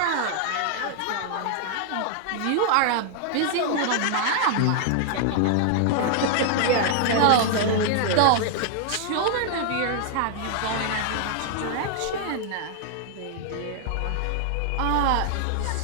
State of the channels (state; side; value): different; both; correlation 0.00